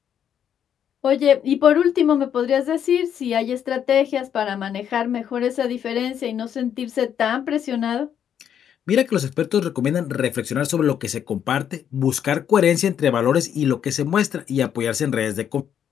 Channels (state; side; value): quieter; right; 9.0 dB